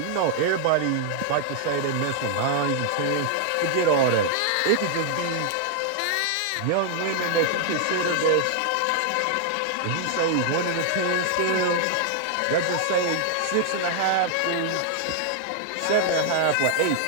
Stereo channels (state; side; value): different; both; correlation 0.00